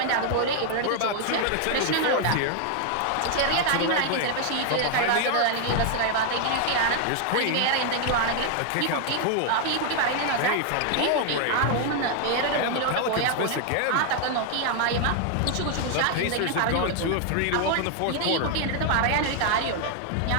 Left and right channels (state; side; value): different; both; correlation 0.00